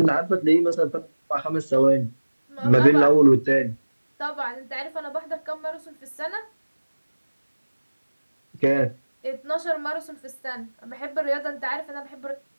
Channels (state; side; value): inverted; both; correlation -1.00